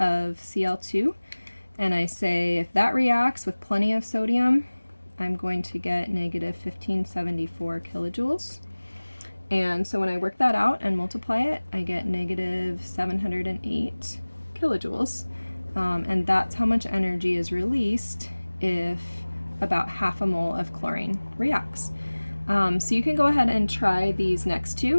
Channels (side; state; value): both; inverted; correlation -1.00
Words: Cl2 and I say if that reacts with plenty of sodium, I'm going to get negative 1574 kilojoules. And so when I work that out and multiply it, I get negative 708 kilojoules. And that's how much energy is released if about half a mole of chlorine reacts. So you can go ahead and try these next